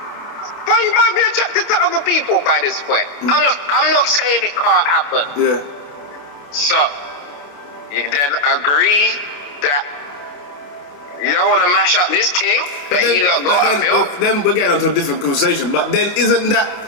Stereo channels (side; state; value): right; late; 28 ms